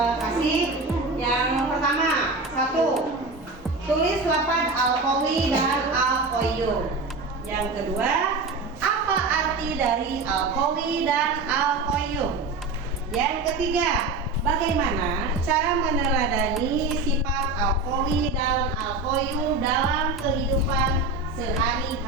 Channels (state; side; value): quieter; left; 3.6 dB